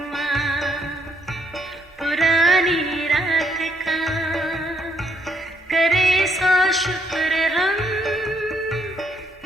पुरानी रात का, करे सौ शुक्र हम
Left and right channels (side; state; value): both; normal; correlation 0.71